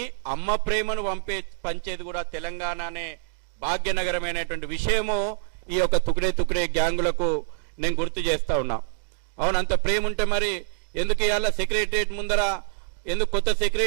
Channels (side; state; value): left; silent; digital silence